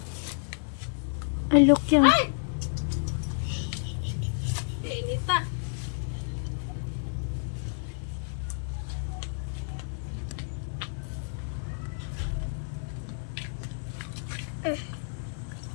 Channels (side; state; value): right; silent; digital silence